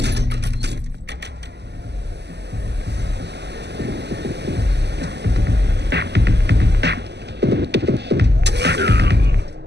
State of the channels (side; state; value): left; late; 0.50 ms